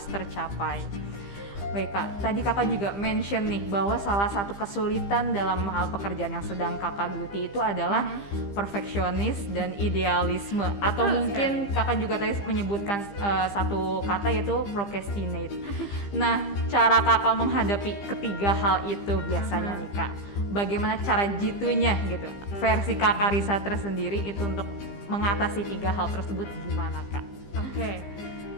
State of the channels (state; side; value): late; right; 15 ms